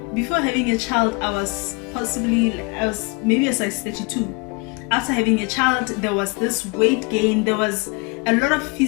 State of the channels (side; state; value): right; quieter; 30.8 dB